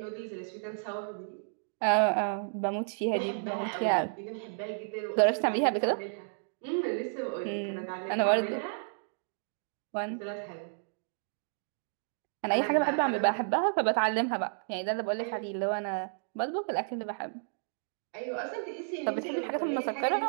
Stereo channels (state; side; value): silent; left; digital silence